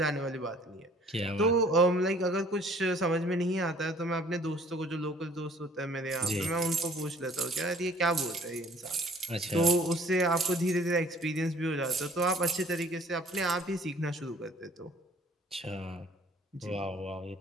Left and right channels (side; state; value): both; normal; correlation 0.55